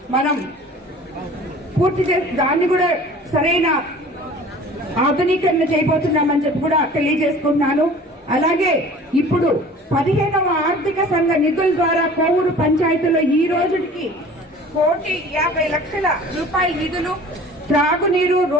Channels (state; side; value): normal; both; correlation 0.45